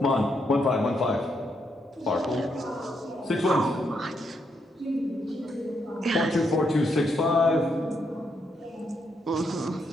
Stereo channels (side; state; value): both; normal; correlation 0.78